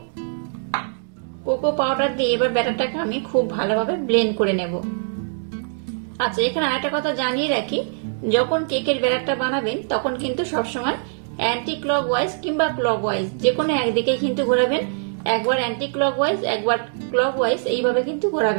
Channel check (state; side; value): silent; left; digital silence